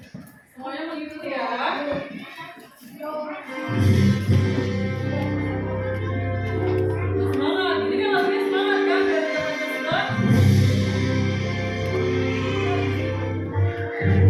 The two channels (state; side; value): identical; both; correlation 1.00